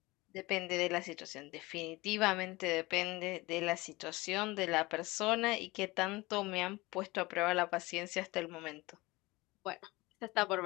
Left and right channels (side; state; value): right; quieter; 21.8 dB